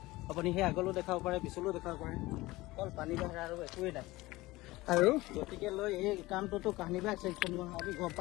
আপুনি সেই আগলৈও দেখাব পাৰে পিছলৈও দেখাব পাৰে অকল পানী বাঢ়া আৰু একোৱেই নাই আৰু গতিকে লৈ এই কামটোতো কাহিনীবাগ ছেকশ্যন আমি গম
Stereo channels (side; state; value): right; quieter; 19.6 dB